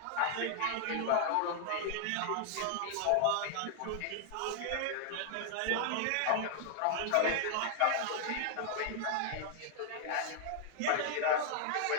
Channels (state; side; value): different; both; correlation 0.00